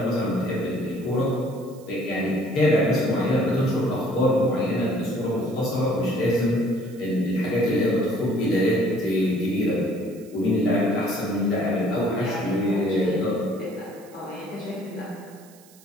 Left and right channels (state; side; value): noise; right; hiss, 25 dB below the sound